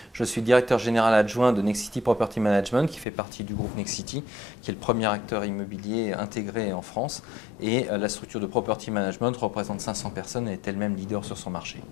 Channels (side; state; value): right; drops out; at 3.1 s